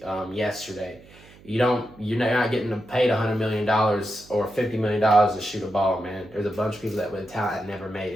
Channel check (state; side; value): noise; right; hum, 23 dB below the sound